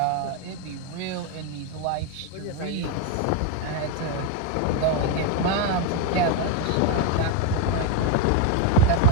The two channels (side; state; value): both; different; correlation 0.02